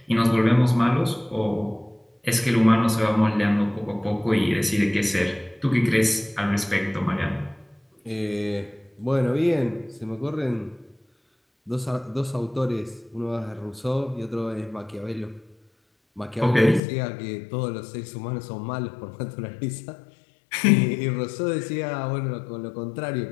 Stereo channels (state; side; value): drops out; right; at 16.8 s